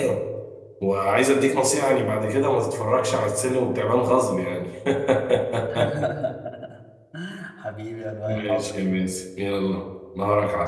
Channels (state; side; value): identical; both; correlation 1.00